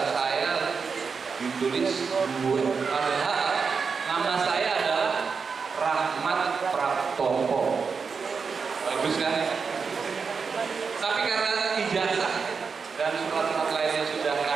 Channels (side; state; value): left; quieter; 5.4 dB